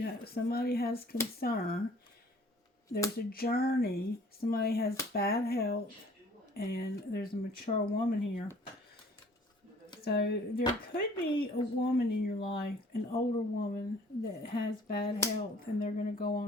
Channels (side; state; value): both; normal; correlation 0.54